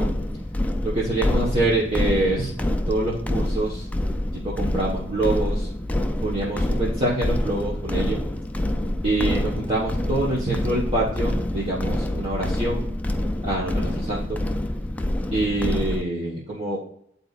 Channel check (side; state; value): both; normal; correlation 0.71